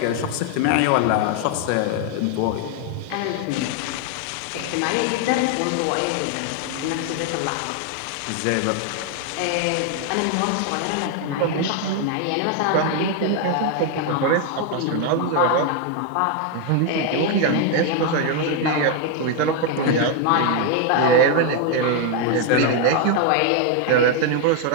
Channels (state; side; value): different; both; correlation 0.01